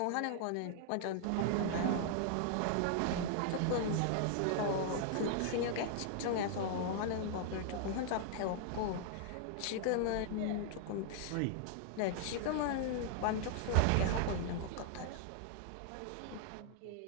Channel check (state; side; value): different; both; correlation -0.01